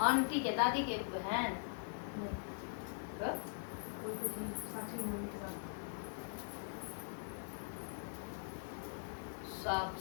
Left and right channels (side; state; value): right; silent; digital silence